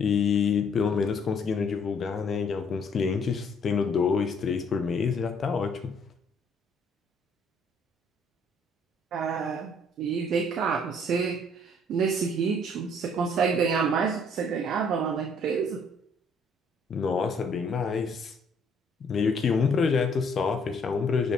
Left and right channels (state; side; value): normal; both; correlation 0.63